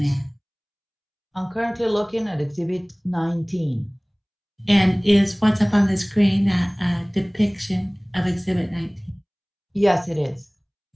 at? I'm currently looking at exhibit 19. And is what's up on the screen a depiction of exhibit 19? Yes, it is.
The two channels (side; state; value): both; identical; correlation 1.00